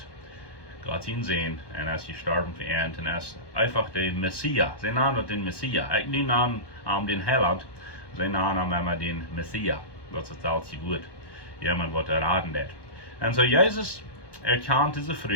ihn sehen und als gestorben für ihn und als einfach der Messias. Sie nennen den Messias. Ich nenne den Heiland, sie nennen immer den Messias. Das ist alles gut. Jemand wird erraten dat. Und so Jesus erkannt diese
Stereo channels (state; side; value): late; right; 1.1 ms